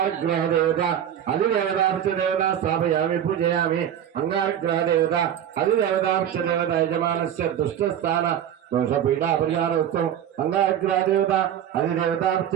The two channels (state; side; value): quieter; left; 10.0 dB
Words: देवता अधिदेवतार्च देवता स्थापयामि पूजयामि अंगारग्रह देवता अधिदेवतार्च देवता यजमानस्य दुष्टस्थान दोषपीडा परिहारोऽस्तु अंगारग्रह देवता अधिदेवतार्च